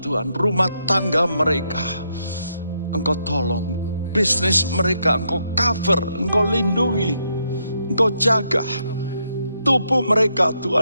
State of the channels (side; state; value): both; inverted; correlation -0.78